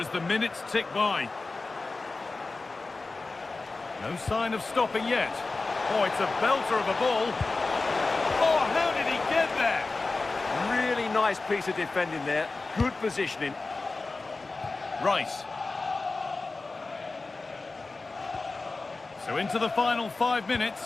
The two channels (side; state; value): right; quieter; 3.6 dB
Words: the minutes tick by. No sign of stopping yet. Oh, it's a belter of a ball. Oh, how did he get there? Really nice piece of defending there. Good positioning. Rice. So into the final 5